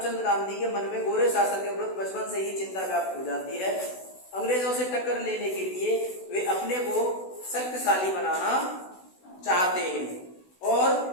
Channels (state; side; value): late; right; 16 ms